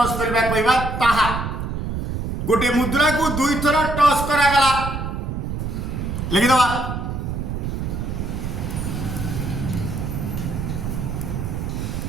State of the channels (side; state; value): right; noise; rumble, 4 dB below the sound